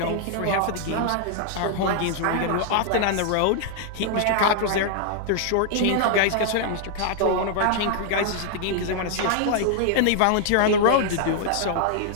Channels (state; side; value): different; both; correlation 0.00